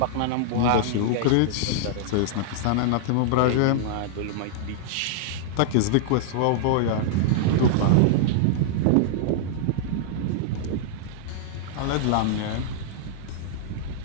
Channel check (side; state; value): both; different; correlation -0.01